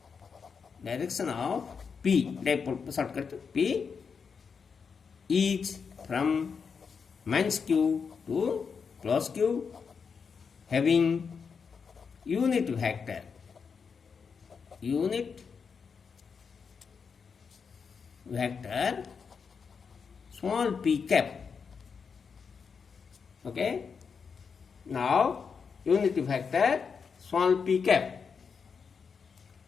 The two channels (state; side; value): quieter; right; 5.9 dB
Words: P, dipole shortcut P, is from minus Q to plus Q having unit vector small p cap. Okay. Now, unit vector small p cap.